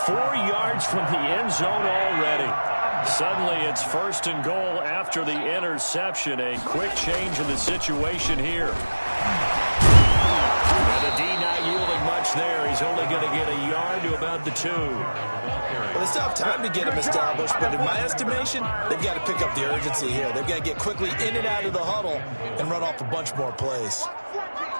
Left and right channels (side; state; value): both; inverted; correlation -1.00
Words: 4 yards from the end zone already. Suddenly, it's 1st and goal after the interception. A quick change in the situation here. And the D not yielding much there. He's only going to get a yard to about the 2. Well, they still have time to get him established, but in my estimation, they've got to pick up the urgency here. They've got to get quickly in and out of the huddle and run off a bunch more plays.